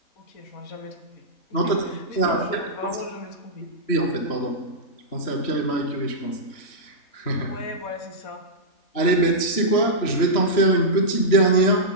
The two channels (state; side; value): late; right; 3.1 ms